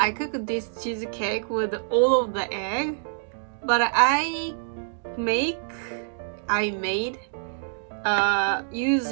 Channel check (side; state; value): left; silent; digital silence